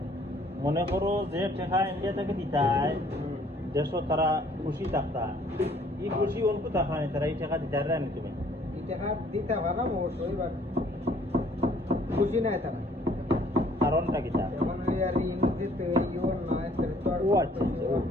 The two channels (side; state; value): both; normal; correlation 0.59